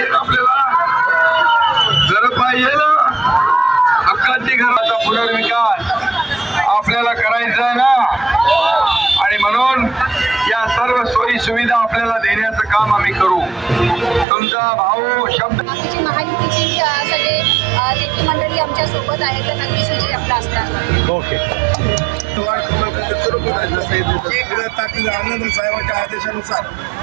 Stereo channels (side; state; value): left; drops out; at 14.2 s